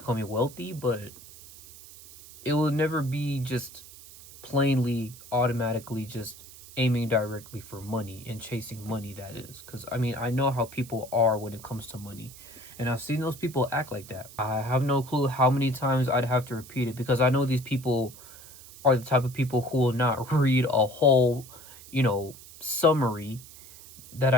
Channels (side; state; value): right; noise; hiss, 18 dB below the sound